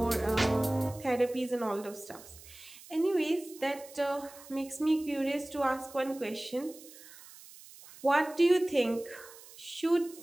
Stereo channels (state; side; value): noise; right; hiss, 19 dB below the sound